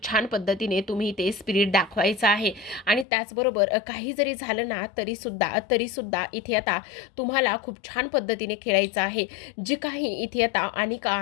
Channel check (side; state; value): right; drops out; at 3.1 s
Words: छान पद्धतीने तुम्ही ते स्पिरिट दाखवायचं आहे आणि त्याचबरोबर काही जरी झालं ना तरी सुद्धा इथे आता तुम्हाला खूप छान पद्धतीने खेळायचं आहे. जे काही इथे आता अनिका